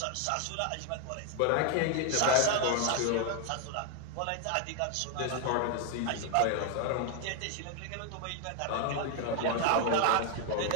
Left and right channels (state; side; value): different; both; correlation 0.01